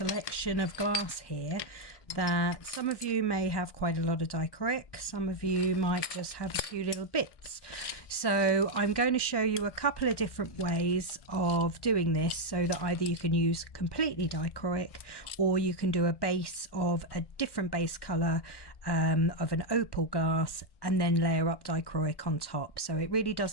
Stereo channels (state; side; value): late; right; 1.1 ms